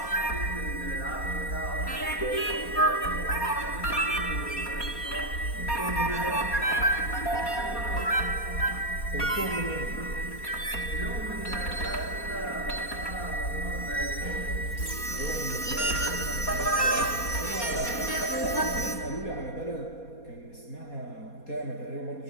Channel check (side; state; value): right; late; 4.2 ms